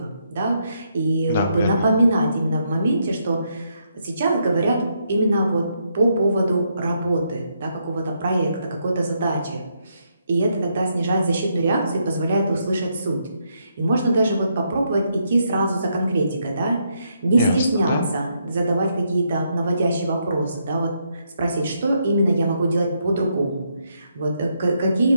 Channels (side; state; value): both; inverted; correlation -0.77